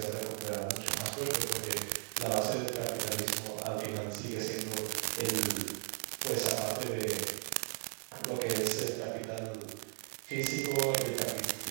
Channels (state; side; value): silent; left; 54 dB below the other